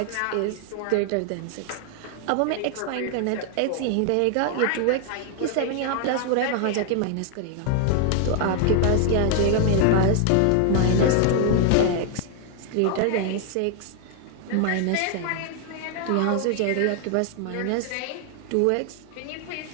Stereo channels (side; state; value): both; different; correlation 0.00